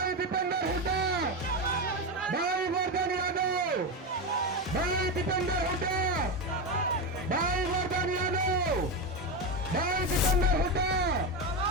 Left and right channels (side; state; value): both; normal; correlation 0.14